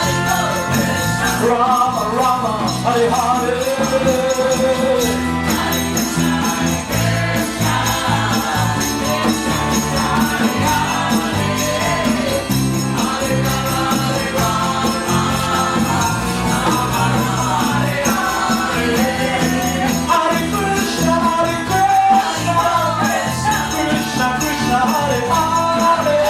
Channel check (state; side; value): identical; both; correlation 1.00